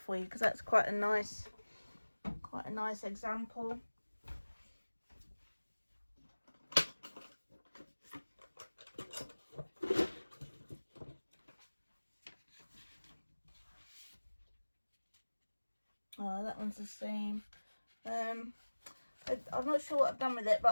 for you, because that's quite a nice example. Oh, that one's the same. I'm not sure what I've done with it,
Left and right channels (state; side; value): inverted; both; correlation -1.00